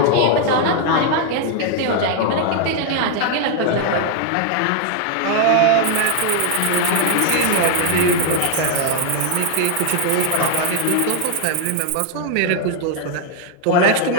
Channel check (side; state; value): both; different; correlation 0.00